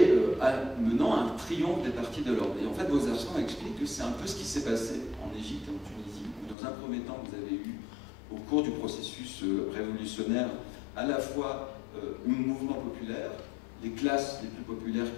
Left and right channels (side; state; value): right; drops out; at 6.6 s